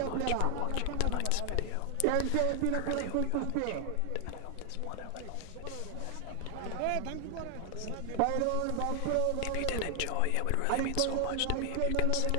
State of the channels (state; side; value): different; both; correlation 0.00